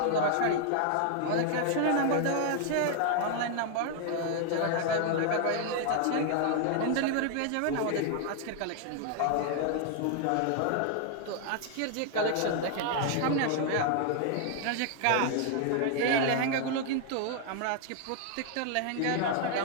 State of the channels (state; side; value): different; both; correlation 0.00